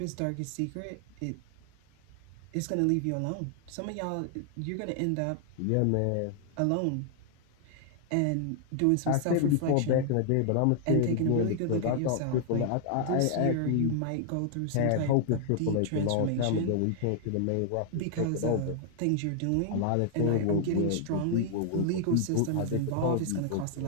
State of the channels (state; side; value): different; both; correlation 0.00